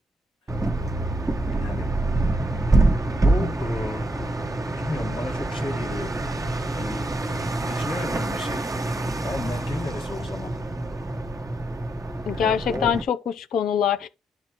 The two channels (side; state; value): both; normal; correlation 0.79